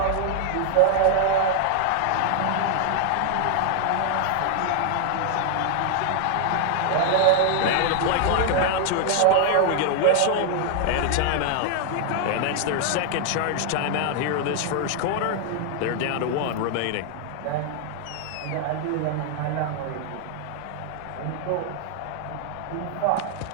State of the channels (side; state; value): both; different; correlation 0.00